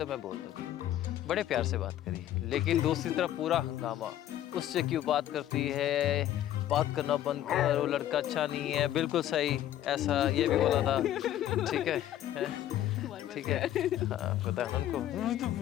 मैं बोल दूँगी। बड़े प्यार से बात करी, लेकिन दूसरी तरफ पूरा हंगामा, उससे क्यों बात करती है, बात करना बंद कर, वो लड़का अच्छा नहीं है, बिल्कुल सही, ऐसा ये भी बोला था, ठीक है, ठीक है, हाँ पता है उनको,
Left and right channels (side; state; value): right; quieter; 12.3 dB